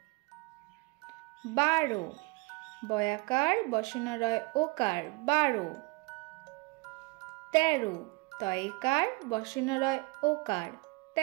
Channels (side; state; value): left; quieter; 25.9 dB